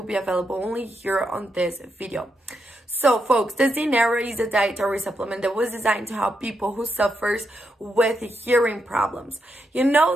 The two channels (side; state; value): both; normal; correlation 0.82